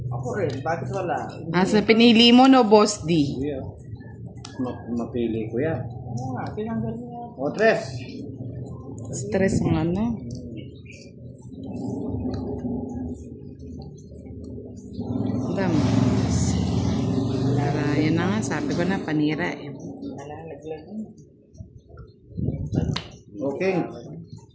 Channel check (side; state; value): both; identical; correlation 1.00